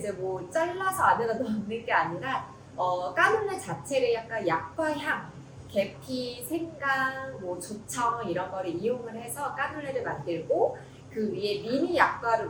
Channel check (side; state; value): both; identical; correlation 1.00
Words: 뭐 잘라서 안에다 넣는 게 아니라 까눌레 자체를 약간 약과 향, 계피, 생강, 뭐 조청 이런 거를 이용을 해서 까눌레를 만들고 그 위에 미니